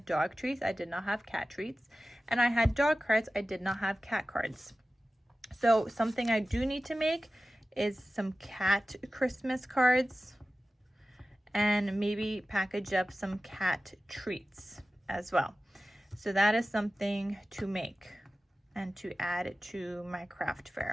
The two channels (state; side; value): normal; both; correlation 0.95